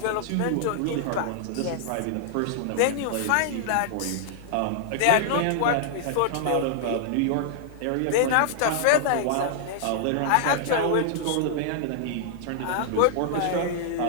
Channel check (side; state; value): both; different; correlation -0.01